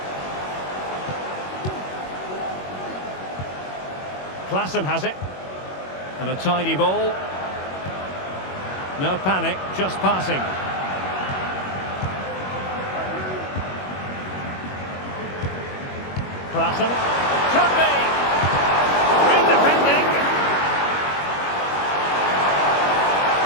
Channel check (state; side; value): late; right; 21 ms